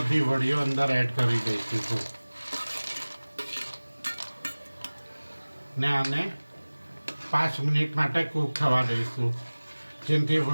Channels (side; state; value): both; inverted; correlation -1.00